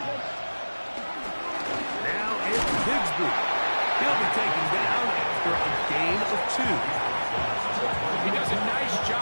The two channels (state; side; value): inverted; both; correlation -1.00